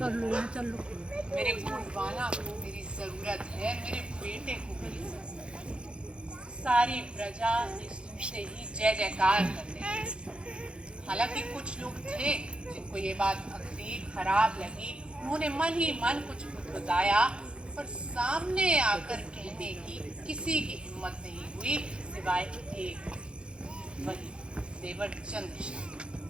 मेरे गोंडवाना को मेरी जरूरत है, मेरे बेटे को मेरी जरूरत है। सारी प्रजा से ही जय जयकार करते हैं। हालांकि कुछ लोग थे जिनको ये बात भक्ति खराब लगी, उन्होंने मन ही मन कुछ बताया और सामने आकर कहने की किसी की हिम्मत नहीं हुई सिवाय एक, वही देवर चंद्र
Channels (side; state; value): left; late; 0.056 ms